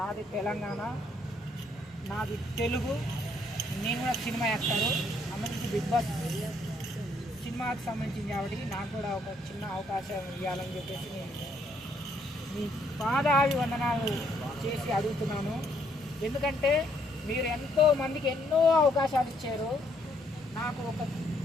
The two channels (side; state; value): both; normal; correlation 0.69